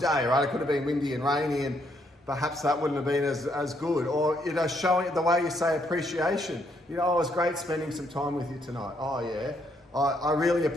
right? It could have been windy and rainy, and perhaps that wouldn't have been as good. Or, showing the way you say appreciation. It was great spending some time with you tonight. Oh, yeah. I really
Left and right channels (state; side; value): normal; both; correlation 0.73